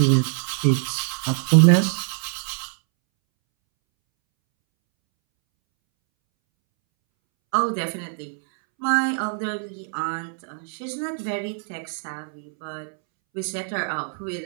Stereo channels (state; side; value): silent; left; 63 dB below the other